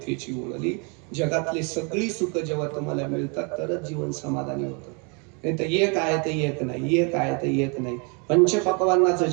ओळली. जगातली सगळी सुख जेव्हा तुम्हाला मिळतात तरच जीवन समाधानी होतं. नाही तर एक आहे तर एक नाही, एक आहे तर एक नाही. पंचपक्वान्नाचं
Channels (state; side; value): quieter; left; 34.9 dB